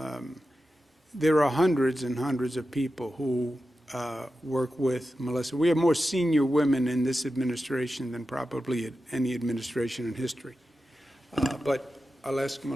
there are hundreds and hundreds of people who work with Melissa. We have more senior women in this administration than probably any administration in history. But I'll ask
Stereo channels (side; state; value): both; normal; correlation 0.92